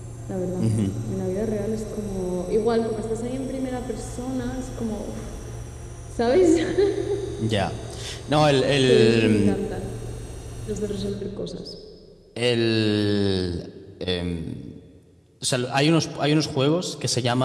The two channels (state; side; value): identical; both; correlation 1.00